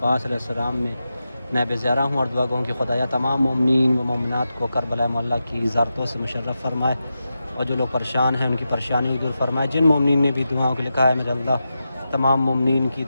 علیہ السلام میں نیب زیارہ ہوں اور دعا گوں کہ خدایا تمام مومنین و مومنات کو کربلا مولا کی زیارتوں سے مشرف فرمائے، اور جو لوگ پریشان ہیں ان کی پریشانی دور فرمائے۔ جن مومنین نے بھی دعاؤں کو لکھا ہے میرے اللہ تمام مومنین کی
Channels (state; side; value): inverted; both; correlation -0.90